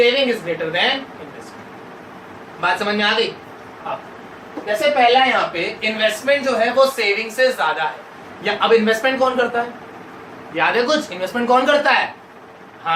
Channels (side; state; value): both; identical; correlation 1.00